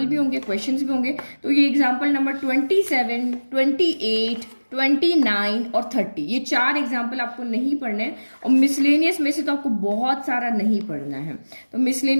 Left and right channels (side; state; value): both; inverted; correlation -1.00